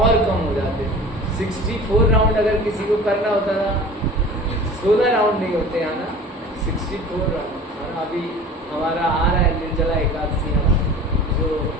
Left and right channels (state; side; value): normal; both; correlation 0.40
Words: कम हो जाते। 64 राउंड अगर किसी को करना होता था, 16 राउंड नहीं होते है ना, 64 राउंड है ना। अभी हमारा आ रहा है निर्जला एकादशी, है ना, जो